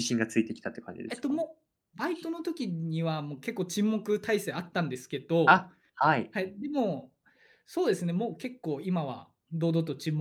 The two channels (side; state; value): both; identical; correlation 1.00